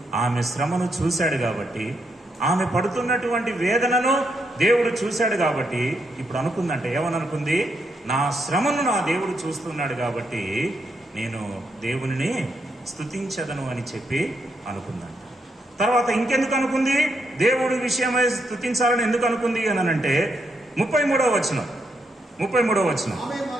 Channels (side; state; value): both; normal; correlation 0.79